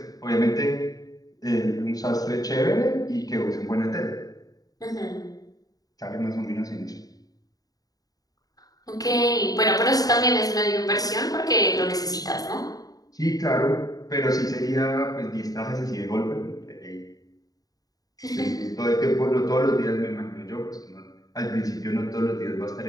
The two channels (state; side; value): late; right; 0.18 ms